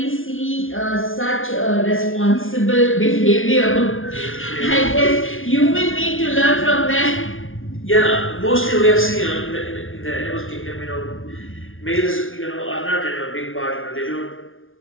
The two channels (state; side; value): late; right; 0.58 ms